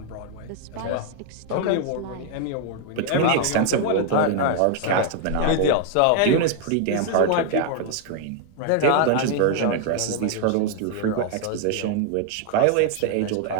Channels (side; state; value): both; different; correlation 0.00